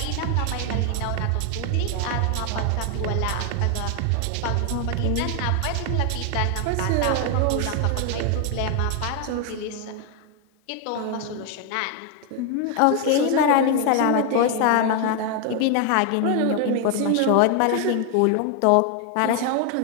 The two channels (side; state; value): both; different; correlation 0.01